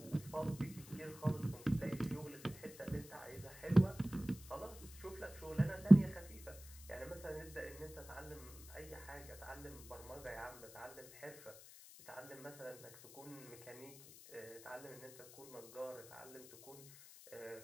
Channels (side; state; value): left; noise; hiss, 17 dB below the sound